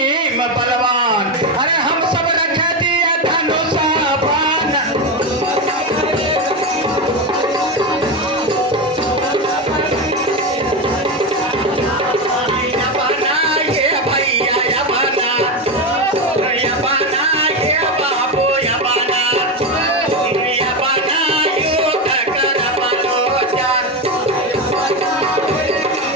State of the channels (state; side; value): normal; both; correlation 0.14